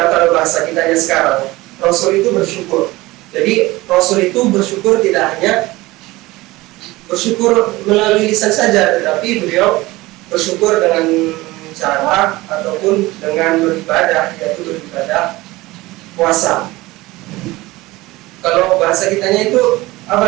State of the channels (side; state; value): left; quieter; 19.8 dB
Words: kalau bahasa kitanya sekarang, Rasul itu bersyukur. Jadi Rasul itu bersyukur tidak hanya bersyukur melalui lisan saja, tetapi beliau bersyukur dengan cara ataupun dengan beribadah, yaitu beribadah puasa. Kalau bahasa kitanya itu